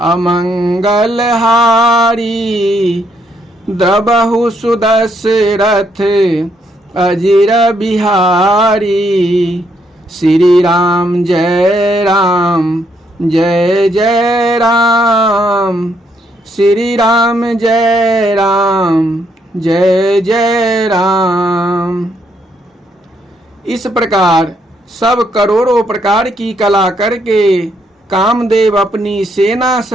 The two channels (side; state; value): both; normal; correlation 0.74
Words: अमंगल हारी द्रबहु सुदशरथ अजिर बिहारी। श्री राम जय राम जय जय राम। श्री राम जय राम जय जय राम। इस प्रकार सब करोड़ों प्रकार की कला करके कामदेव अपनी सेना